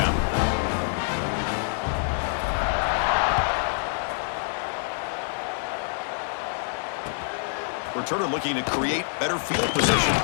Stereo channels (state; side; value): silent; right; digital silence